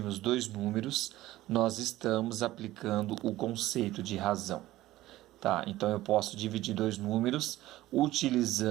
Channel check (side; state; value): left; quieter; 16.1 dB